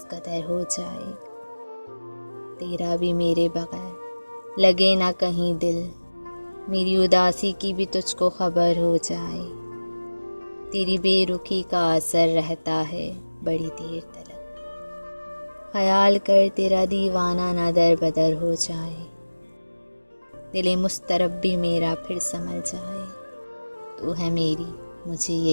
قدر ہو جائے، تیرا بھی میرے بغیر لگے نہ کہیں دل، میری اداسی کی بھی تجھ کو خبر ہو جائے، تیری بے رخی کا اثر رہتا ہے بڑی دیر تلک، خیال کر تیرا دیوانہ نہ در بدر ہو جائے، دل مضطرب بھی میرا پھر سنبھل جائے، تو ہے میری مجھے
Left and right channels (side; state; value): both; inverted; correlation -1.00